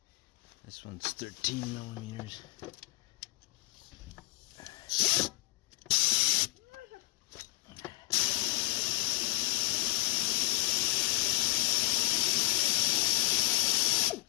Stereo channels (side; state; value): right; quieter; 19.7 dB